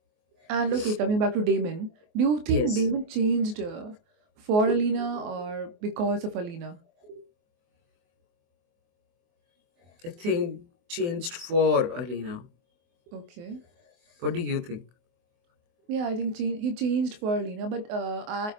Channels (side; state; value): left; late; 24 ms